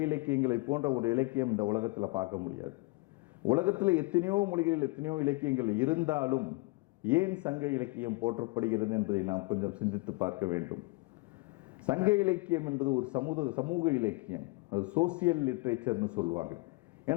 இலக்கியங்களை போன்ற ஒரு இலக்கியம் இந்த உலகத்தில் பார்க்க முடியாது. உலகத்தில் எத்தனையோ மொழிகளில் எத்தனையோ இலக்கியங்கள் இருந்தாலும் ஏன் சங்க இலக்கியம் போற்றப்படுகிறது என்பதை நாம் கொஞ்சம் சிந்தித்து பார்க்க வேண்டும். சங்க இலக்கியம் என்பது ஒரு சமூக இலக்கியம். அது சோசியல் லிட்ரேச்சர்னு சொல்லுவாங்க.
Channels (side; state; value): right; quieter; 25.8 dB